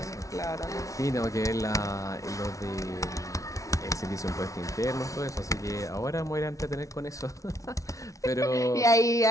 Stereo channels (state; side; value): late; right; 0.16 ms